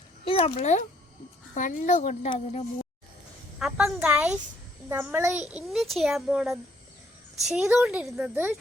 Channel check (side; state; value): both; normal; correlation 0.67